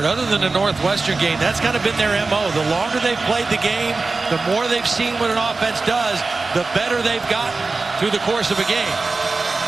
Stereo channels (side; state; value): left; quieter; 3.7 dB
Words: other than the Northwestern game, that's kind of been their MO. The longer they've played the game, the more they've seen what an offense does, the better they've gotten through the course of a game.